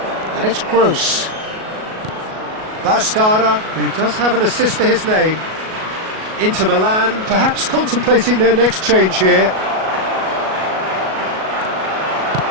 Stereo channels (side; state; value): left; late; 37 ms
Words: And it's Gross. Bastarda, who does have an assist to his name. Inter Milan, perhaps contemplating their next change here.